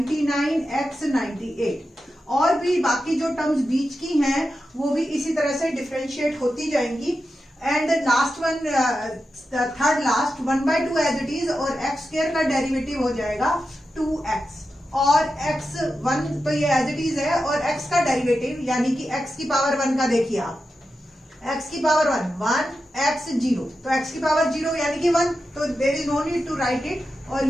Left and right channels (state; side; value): normal; both; correlation 0.90